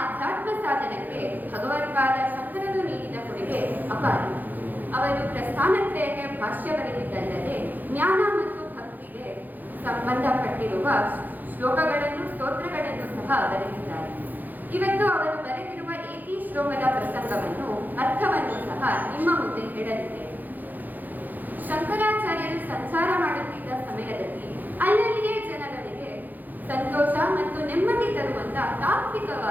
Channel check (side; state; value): left; late; 0.085 ms